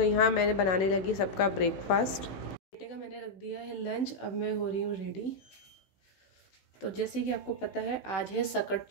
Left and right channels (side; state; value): right; late; 16 ms